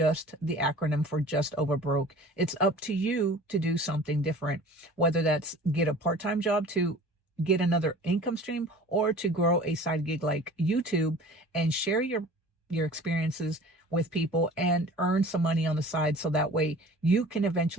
the acronym for just over broke. It's up to you to do something different, whether that's get a part-time job to get another income stream, or to grow a side gig like YouTube and share your experiences with people and earn some money on the side, so that way you can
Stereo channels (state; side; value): normal; both; correlation 0.44